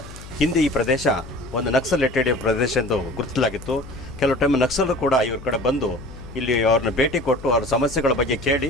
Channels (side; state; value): left; noise; hum, 16 dB below the sound